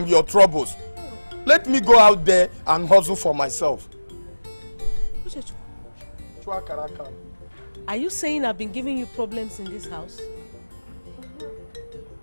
your troubles. Let me go out there and hustle for myself. Are you saying I've been giving you problems in this house?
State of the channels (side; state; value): both; inverted; correlation -1.00